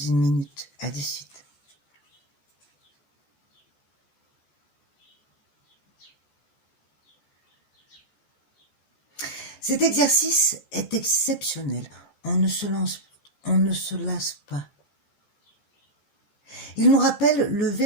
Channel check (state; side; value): late; right; 14 ms